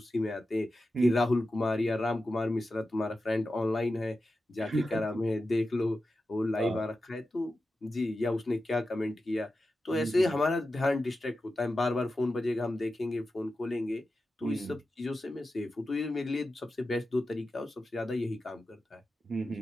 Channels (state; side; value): normal; both; correlation 0.92